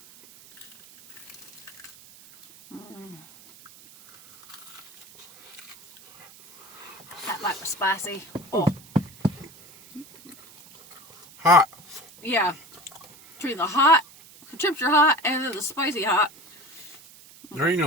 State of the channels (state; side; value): noise; right; hiss, 22 dB below the sound